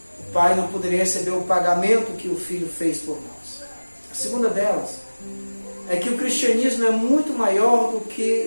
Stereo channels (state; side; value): inverted; both; correlation -1.00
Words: o Pai não poderia receber o pagamento que o Filho fez por nós. A segunda delas é que o cristianismo é muito maior do